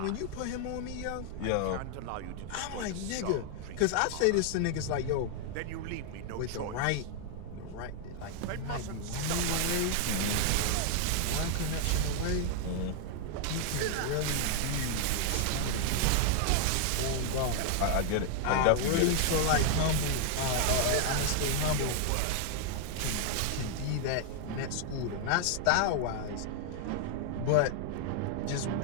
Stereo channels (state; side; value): different; both; correlation 0.00